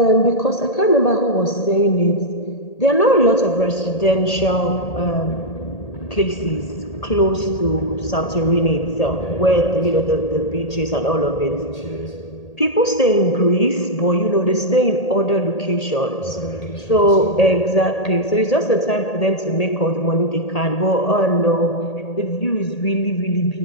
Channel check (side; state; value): right; late; 1.8 ms